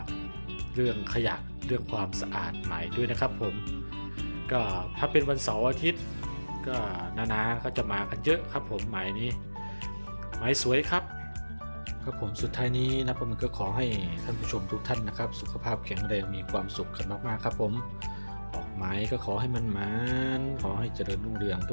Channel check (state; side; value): inverted; both; correlation -1.00